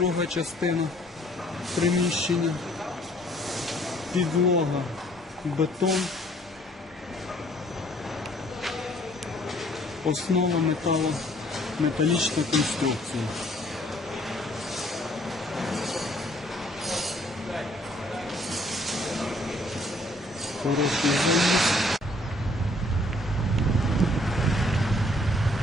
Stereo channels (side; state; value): both; normal; correlation 0.61